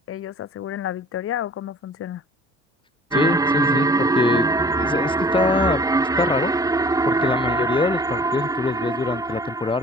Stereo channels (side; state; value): both; normal; correlation 0.49